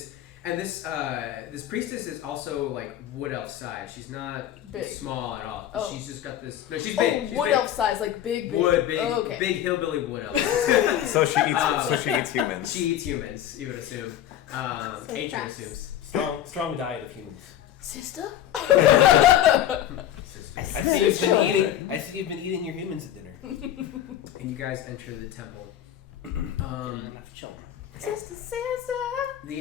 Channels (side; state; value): right; quieter; 11.4 dB